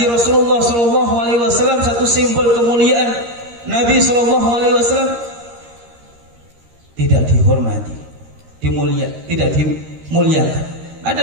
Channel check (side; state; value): left; late; 13 ms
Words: Rasulullah sallallahu alaihi wasallam, satu simbol kemuliaan Nabi sallallahu alaihi wasallam, tidak dihormati, tidak dimuliakan.